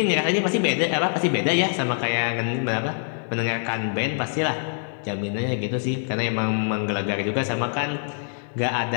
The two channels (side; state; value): right; silent; 62 dB below the other